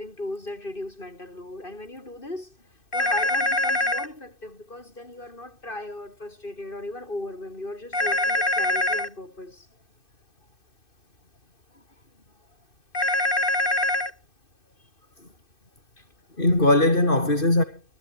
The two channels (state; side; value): late; right; 2.6 ms